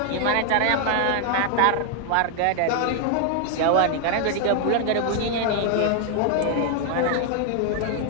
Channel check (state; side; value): different; both; correlation 0.00